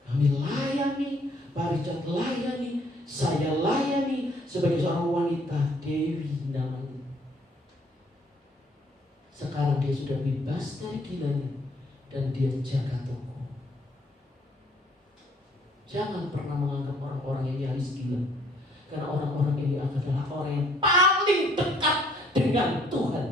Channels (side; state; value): both; normal; correlation 0.62